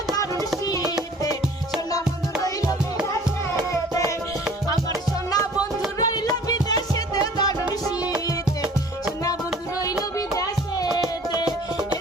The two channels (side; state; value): both; normal; correlation 0.49